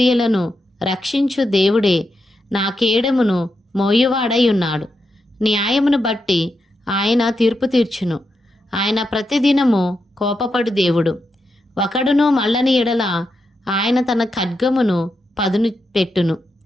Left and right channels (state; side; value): normal; both; correlation 0.85